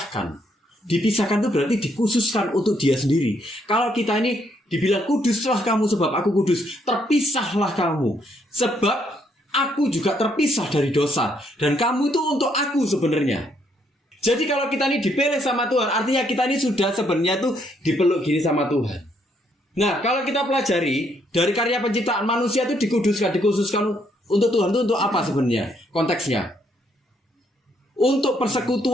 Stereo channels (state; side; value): normal; both; correlation 0.72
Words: Dipisahkan itu berarti dikhususkan untuk dia sendiri. Kalau kita ini dibilang kuduslah kamu sebab aku kudus, terpisahlah kamu sebab aku juga terpisah dari dosa. Dan kamu itu untuk aku sebenarnya. Jadi kalau kita ini dipilih sama Tuhan, artinya kita ini sudah sebenarnya tuh dipeluk gini sama Tuhan. Nah, kalau kita pelajari dari karya penciptaan manusia itu dikhususkan untuk Tuhan itu untuk apa sebenarnya? Konteksnya untuk